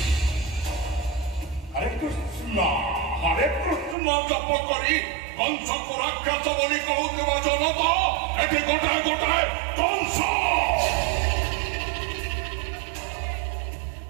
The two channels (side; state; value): left; drops out; at 4.0 s